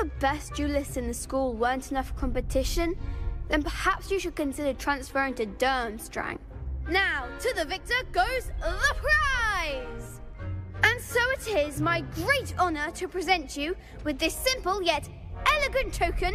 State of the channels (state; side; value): identical; both; correlation 1.00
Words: best duelists in the school weren't enough for competition, then perhaps you should consider transferring to Durmstrang. Now, to the victor goes the prize! And so it is my great honor to present you with this simple yet elegant